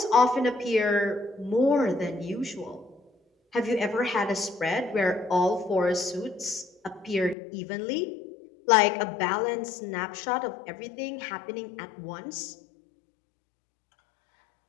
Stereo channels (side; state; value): right; drops out; at 7.4 s